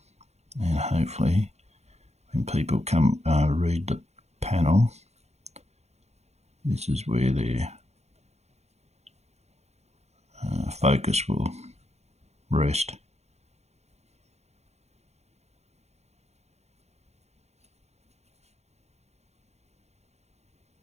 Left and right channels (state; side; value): late; left; 0.31 ms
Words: And hopefully when people come read the panel, this is where their focus will rest.